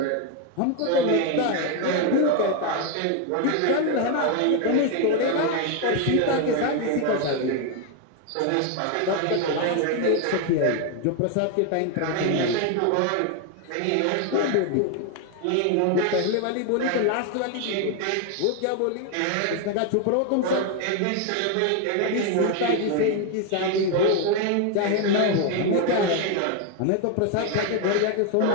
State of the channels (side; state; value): both; different; correlation 0.01